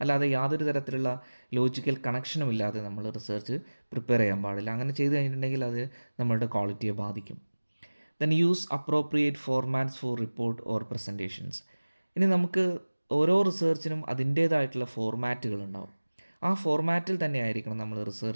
അല്ലാതെ യാതൊരു തരത്തിലുള്ള ലോജിക്കൽ കണക്ഷനും ഇല്ലാതെ നമ്മൾ റിസർച്ച് പ്രിപ്പയർ ചെയ്യാൻ പാടില്ല. അങ്ങനെ ചെയ്ത് കഴിഞ്ഞിട്ടുണ്ടെങ്കിൽ അത് നമ്മളുടെ ക്വാളിറ്റിയെ ബാധിക്കും. Then use appropriate formats for report or presentations. ഇനി നമുക്ക് ഓരോ റിസർച്ചിനും അതിൻ്റേതായിട്ടുള്ള ഫോർമാറ്റുകൾ ഉണ്ടാവും. ആ ഫോർമാറ്റിൽ തന്നെ ആയിരിക്കണം നമ്മൾ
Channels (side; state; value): both; inverted; correlation -1.00